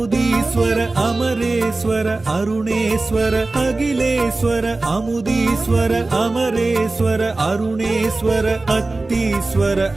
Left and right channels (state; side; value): quieter; left; 3.2 dB